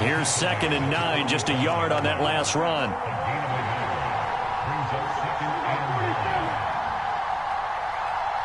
2nd and 9. Just a yard on that last run.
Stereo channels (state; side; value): identical; both; correlation 1.00